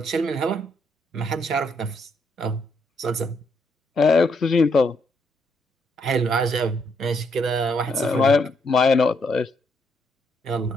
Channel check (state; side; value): normal; both; correlation 0.74